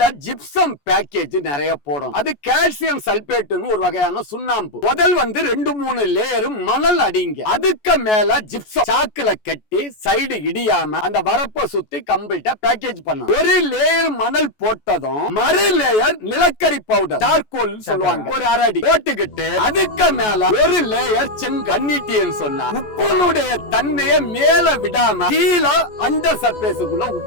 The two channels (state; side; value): late; right; 14 ms